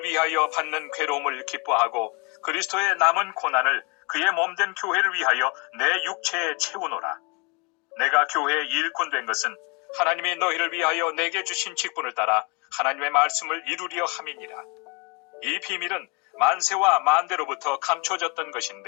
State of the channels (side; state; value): right; quieter; 30.6 dB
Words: 위하여 받는 괴로움을 기뻐하고 그리스도의 남은 고난을 그의 몸된 교회를 위하여 내 육체에 채우노라. 내가 교회의 일꾼 된 것은 하나님이 너희를 위하여 내게 주신 직분을 따라 하나님의 말씀을 이루려 함이니라. 이 비밀은 만세와 만대로부터 감춰졌던